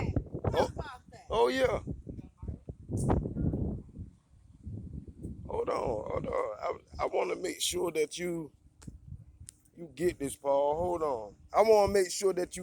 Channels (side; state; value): both; identical; correlation 1.00